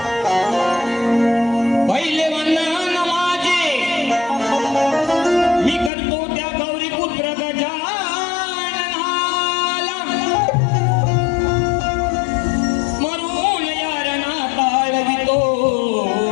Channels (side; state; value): right; drops out; at 5.9 s